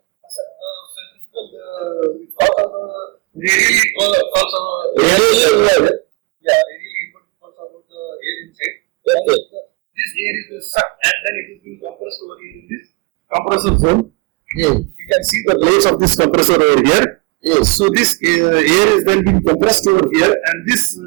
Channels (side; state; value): left; quieter; 27.6 dB